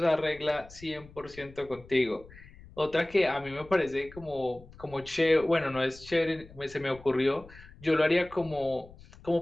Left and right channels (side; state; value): left; noise; rumble, 21 dB below the sound